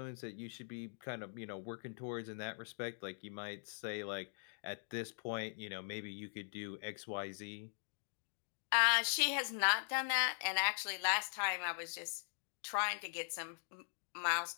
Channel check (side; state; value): right; silent; digital silence